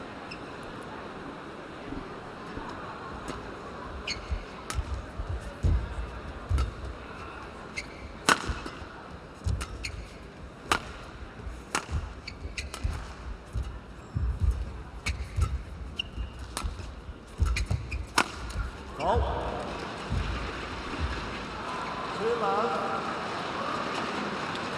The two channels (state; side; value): identical; both; correlation 1.00